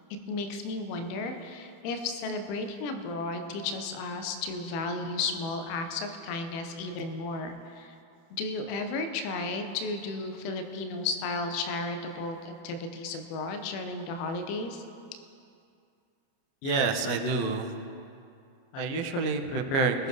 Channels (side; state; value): right; late; 30 ms